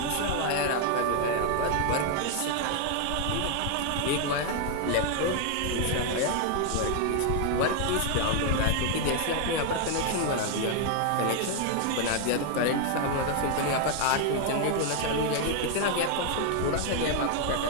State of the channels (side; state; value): both; different; correlation 0.01